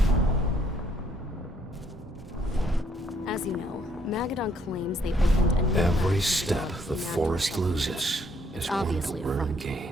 As you know, Magadon claims they opened a new Every lab step for the forest nanomaterials. loses is It's one obviously the a worm front.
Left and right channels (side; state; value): both; normal; correlation 0.68